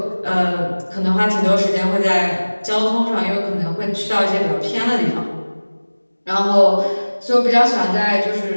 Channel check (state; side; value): inverted; both; correlation -1.00